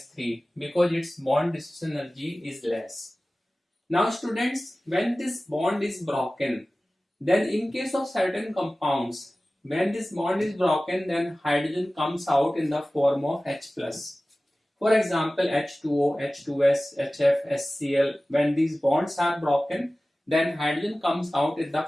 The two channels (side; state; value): both; normal; correlation 0.97